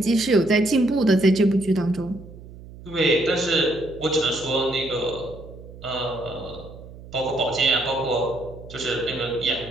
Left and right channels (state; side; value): noise; right; hum, 17 dB below the sound